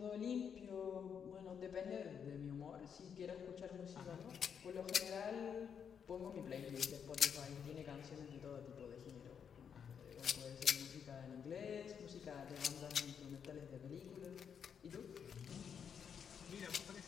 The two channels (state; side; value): quieter; right; 7.4 dB